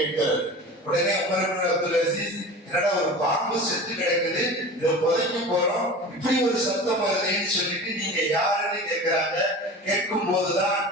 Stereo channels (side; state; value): both; normal; correlation 0.35